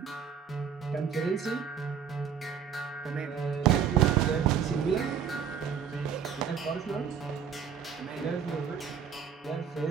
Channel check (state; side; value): quieter; left; 7.5 dB